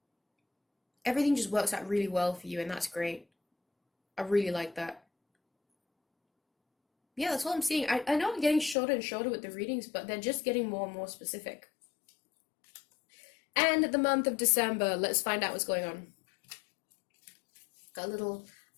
Everything just works out really well for you, and that's great. I really like that. Yeah, that's what I'm seeing. I know I'm getting shorter and shorter with the readings, but they're just getting more and more specific. And the month of December, let's find out what's going on. Got a little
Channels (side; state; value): right; drops out; at 8.8 s